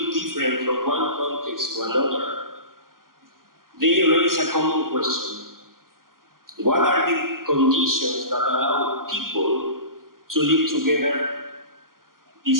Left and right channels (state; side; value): late; left; 0.91 ms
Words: different from one context to another, they raise a common question. What are the conditions that allow people to live together